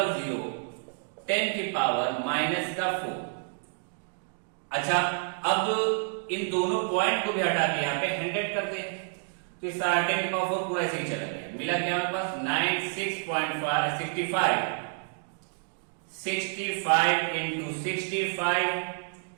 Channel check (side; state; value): left; silent; digital silence